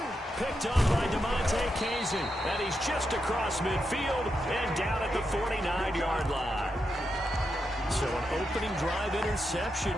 Picked up by DeMonte Kazin, and he's just across midfield and down at the 49-yard line. So an opening drive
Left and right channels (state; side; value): normal; both; correlation 0.85